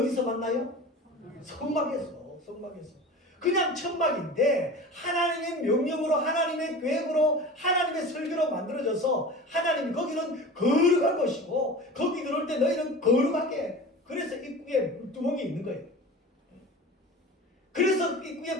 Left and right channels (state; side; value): normal; both; correlation 0.35